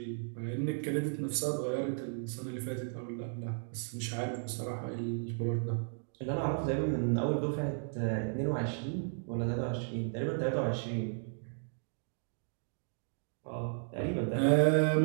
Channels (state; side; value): silent; left; digital silence